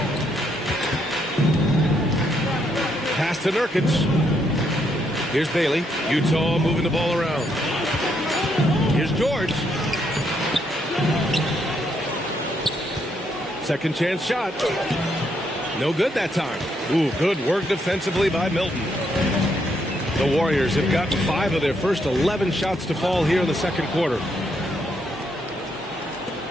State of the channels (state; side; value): normal; both; correlation 0.75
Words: Pass to Nurkic. Here's Bailey. Utah moving the ball around. Here's George. Second chance shot. No good that time. Ooh, good work defensively by Milton. The Warriors have gotten 5 of their first 11 shots to fall here in the second quarter.